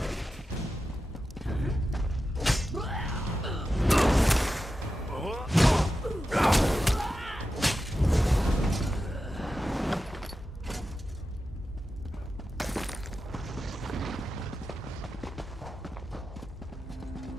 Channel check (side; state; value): both; normal; correlation 0.91